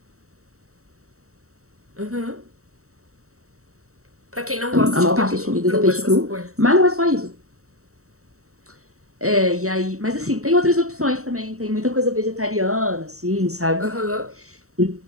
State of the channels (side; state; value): left; late; 0.64 ms